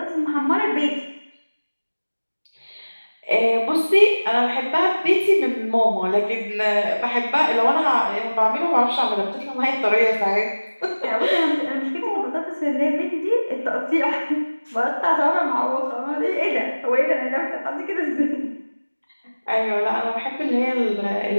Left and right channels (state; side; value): inverted; both; correlation -1.00